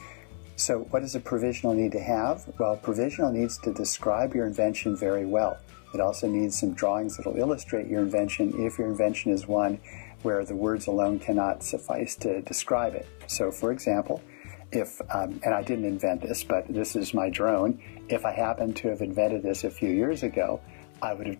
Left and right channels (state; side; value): silent; right; 59 dB below the other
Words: So what does a provisional need to have? Well, a provisional needs to describe your invention very well. It also needs some drawings that will illustrate your invention if your invention is one where the words alone cannot suffice to describe it. So for example, if, and I didn't invent this, but this is my drone, if I happened to have invented this a few years ago, I would have